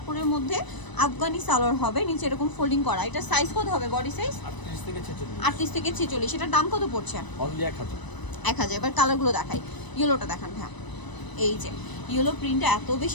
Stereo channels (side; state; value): right; late; 1.0 ms